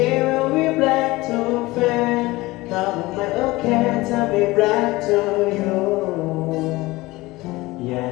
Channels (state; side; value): quieter; right; 20.4 dB